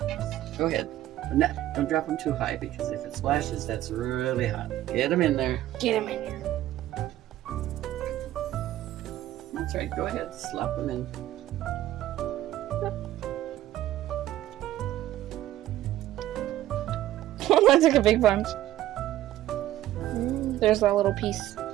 go ahead. But don't drop them too high because if it splashes, that's really hot. Get them in there. Get him in here. That's right, go ahead, slap them in. That took a big bunch. There's that little piece.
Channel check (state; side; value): quieter; left; 13.9 dB